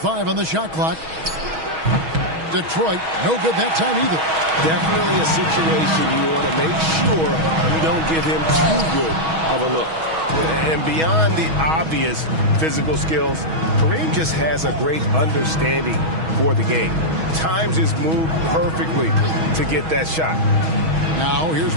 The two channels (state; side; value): late; left; 6.3 ms